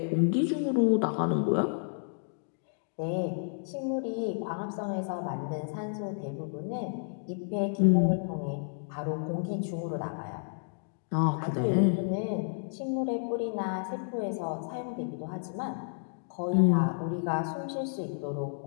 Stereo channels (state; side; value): silent; right; digital silence